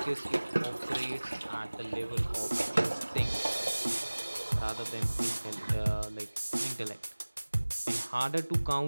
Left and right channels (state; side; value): inverted; both; correlation -1.00